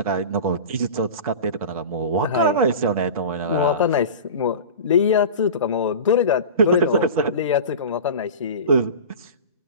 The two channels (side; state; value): both; inverted; correlation -0.31